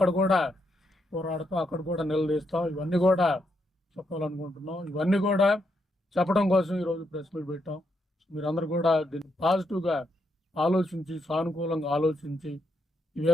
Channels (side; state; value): both; normal; correlation 0.80